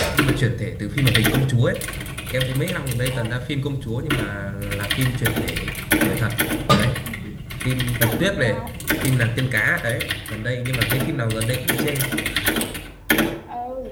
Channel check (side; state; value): both; identical; correlation 1.00